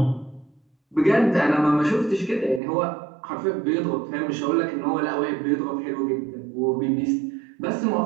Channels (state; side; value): drops out; left; at 2.6 s